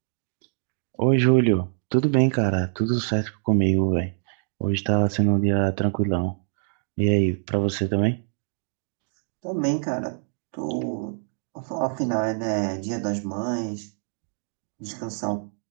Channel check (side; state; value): left; silent; digital silence